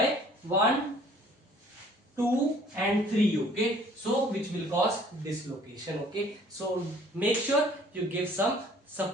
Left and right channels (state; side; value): normal; both; correlation 0.55